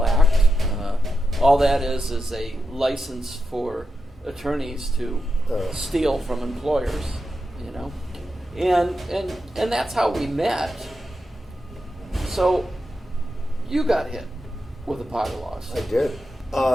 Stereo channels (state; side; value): normal; both; correlation 0.88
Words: Act. All that is a license for attorneys to steal from employers, And that's how we met. So, you got hit with a PAGA lawsuit. I did.